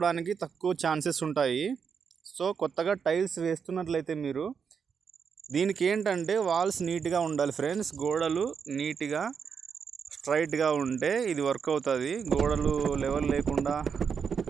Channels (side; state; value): left; quieter; 6.5 dB